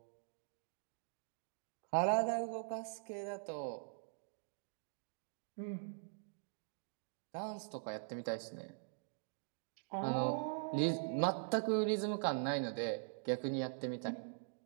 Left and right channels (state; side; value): silent; left; digital silence